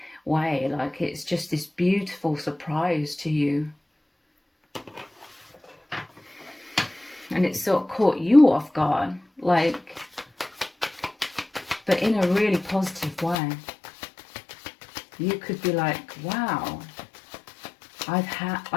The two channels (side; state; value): right; drops out; at 13.4 s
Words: way. Like it's just this beautiful surprise to you. And it sort of caught you off guard, like, but in a really positive way. You could be like, wow, I